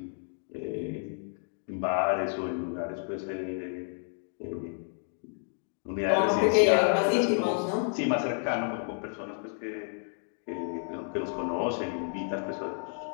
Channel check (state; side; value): silent; right; 57 dB below the other